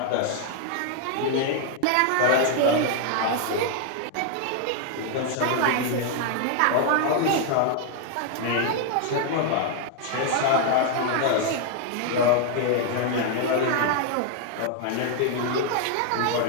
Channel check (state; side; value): different; both; correlation 0.00